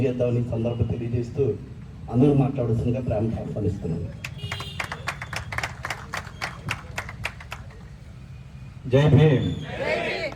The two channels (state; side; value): identical; both; correlation 1.00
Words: సందర్భం తెలియజేస్తూ అందరూ మాట్లాడాల్సిందిగా ప్రేమతో ఆహ్వానిస్తున్నాను. జై భీమ్.